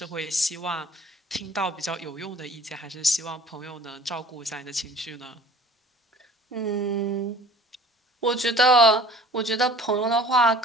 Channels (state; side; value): normal; both; correlation 0.47